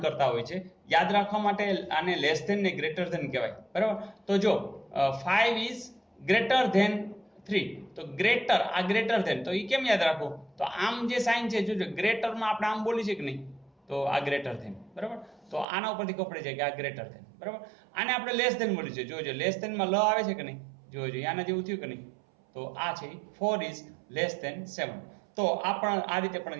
કરતા હોય છે. યાદ રાખવા માટે આને લેસ ધેન ને ગ્રેટર ધેન કહેવાય, બરાબર. તો જો 5 ઇઝ ગ્રેટર ધેન 3 તો ગ્રેટર, આ ગ્રેટર ધેન તો એ કેમ યાદ રાખવું તો આમ જે સાઇન છે જોજો ગ્રેટરમાં આપણે આમ બોલી છે કે નહીં તો આ ગ્રેટર ધેન, બરાબર. તો આના ઉપરથી ખબર પડી જાય કે આ ગ્રેટર ધેન, બરાબર. આને આપણે લેસ ધેન બોલી છે, જોજો લેસ ધેનમાં લ આવે છે કે નહીં જોજો, આના જેવું થયું કે નહીં તો આ છે 4 ઇઝ લેસ ધેન 7. તો આ પણ આ રીતે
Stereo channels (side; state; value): left; drops out; at 15.7 s